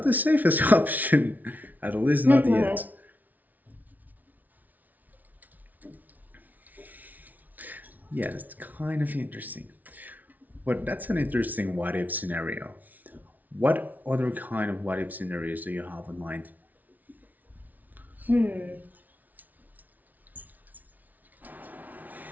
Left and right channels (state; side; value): late; left; 0.077 ms